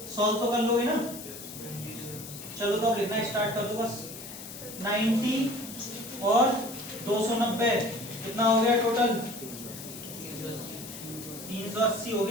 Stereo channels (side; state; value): left; noise; hiss, 12 dB below the sound